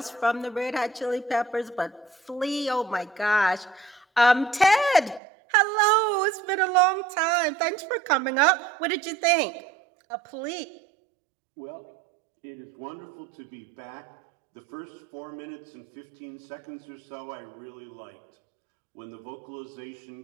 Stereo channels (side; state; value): left; drops out; at 5.2 s